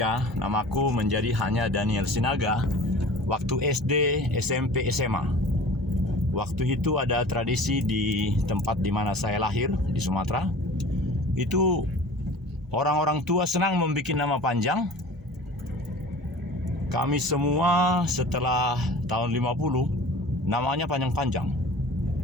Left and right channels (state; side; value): normal; both; correlation 0.42